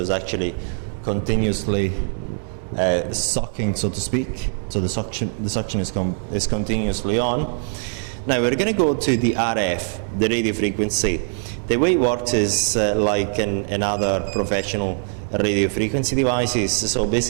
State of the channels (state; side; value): silent; left; digital silence